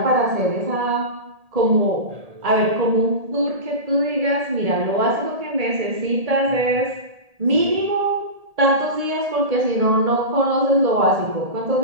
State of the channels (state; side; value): late; left; 1.7 ms